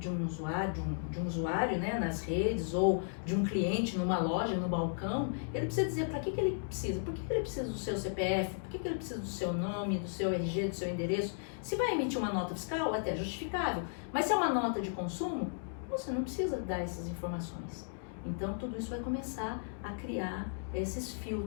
um usuário, né, nas redes, ou de um cliente numa loja, no balcão, ele precisa dizer para que ele precisa. Por que ele precisa do seu CPF? Por que ele precisa do seu nome, do seu RG, do seu endereço? Se vai emitir uma nota fiscal, é até justificável. Mas se é uma nota de consumo, você não precisa dar essas informações. Então, tudo isso vai começar a criar esses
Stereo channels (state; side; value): silent; right; digital silence